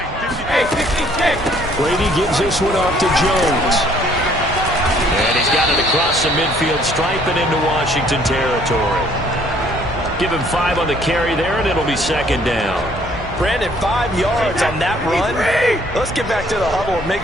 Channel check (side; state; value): both; normal; correlation 0.61